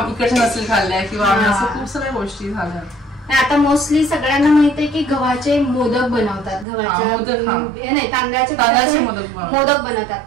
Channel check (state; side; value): drops out; left; at 6.7 s